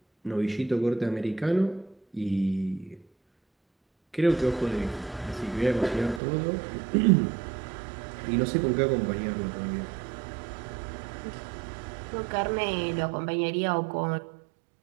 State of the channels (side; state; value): left; drops out; at 6.2 s